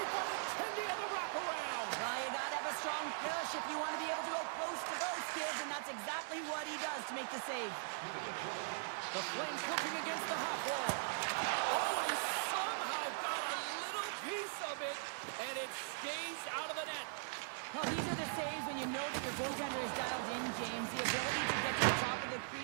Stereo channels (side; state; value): left; silent; digital silence